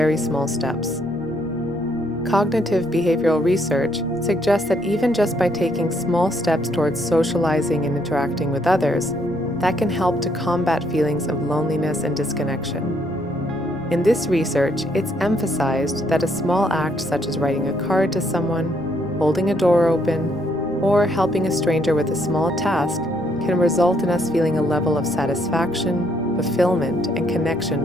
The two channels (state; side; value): noise; left; rumble, 22 dB below the sound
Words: small steps. Cognitive behavioral research suggests that even just by taking small steps towards socializing and interacting with others, that can help to combat feelings of loneliness and disconnection. In this research, it's emphasized that a small act such as writing a card to someone, holding a door open, or helping a stranger with a small task can result in us feeling a level of satisfaction, fulfillment, and